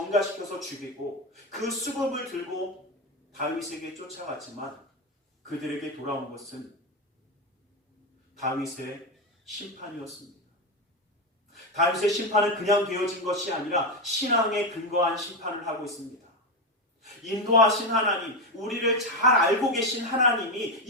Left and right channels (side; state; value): both; normal; correlation 0.11